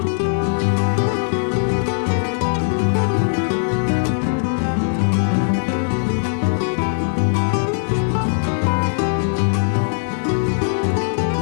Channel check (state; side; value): silent; right; digital silence